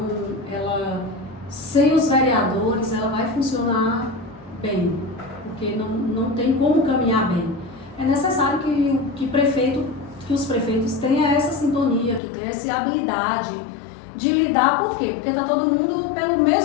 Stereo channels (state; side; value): drops out; right; at 12.2 s